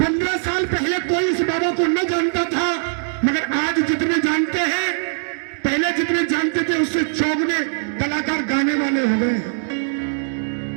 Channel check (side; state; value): left; silent; digital silence